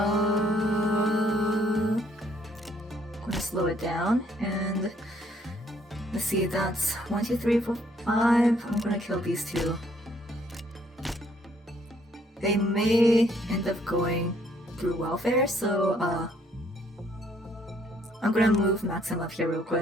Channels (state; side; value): normal; both; correlation 0.66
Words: gonna slow it down, and let's see, that's 1, 2, 3, 4, 5. I'm gonna kill these two. They may end up going through welfare, so I'm gonna move Maxim up here real